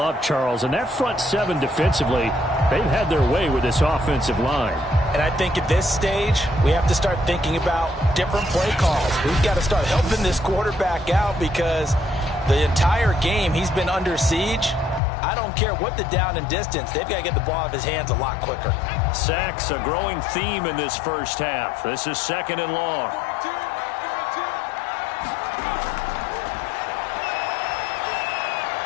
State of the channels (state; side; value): drops out; right; at 15.0 s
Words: Charles. And that front 7 defensively, they've had their way with this offensive line. And I think at this stage, we have to start thinking about different play calls. We've got to start helping this quarterback out because the entire game he's been under siege. I don't care what the down and distance. They've got to get the ball out of his hands a lot quicker. Sacks, a growing theme in this first half. This is 2nd and long.